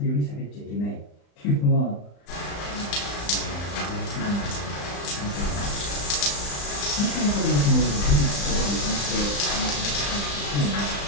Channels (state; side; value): late; right; 35 ms